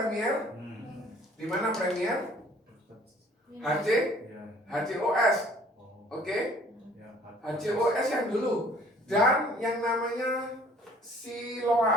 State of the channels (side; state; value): both; normal; correlation 0.55